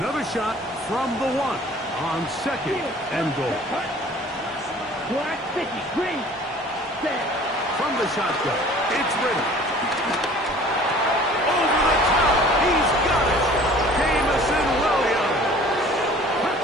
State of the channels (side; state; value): both; normal; correlation 0.49